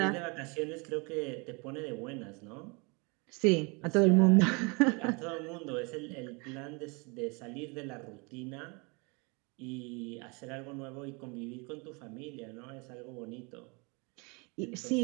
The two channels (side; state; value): left; quieter; 30.3 dB